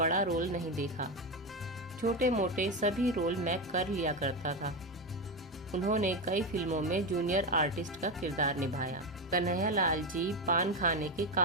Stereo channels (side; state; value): both; normal; correlation 0.14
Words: रोल नहीं देखा। छोटे मोटे सभी रोल मैं कर लिया करता था। उन्होंने कई फिल्मों में जूनियर आर्टिस्ट का किरदार निभाया। कन्हैया लाल जी पान खाने के